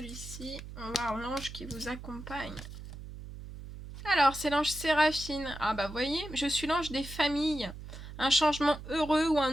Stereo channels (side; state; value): right; noise; hum, 12 dB below the sound